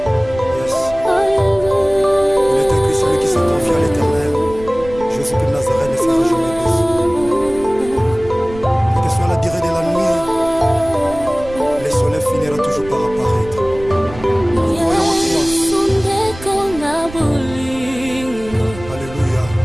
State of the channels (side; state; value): right; noise; rumble, 15 dB below the sound